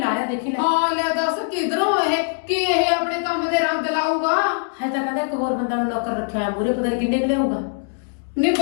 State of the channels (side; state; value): right; silent; digital silence